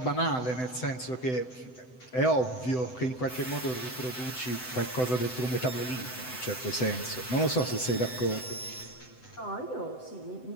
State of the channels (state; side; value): late; right; 7.9 ms